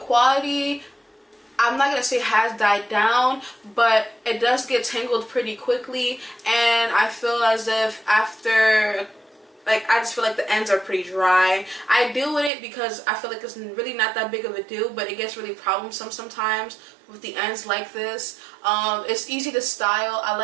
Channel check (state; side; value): drops out; left; at 12.5 s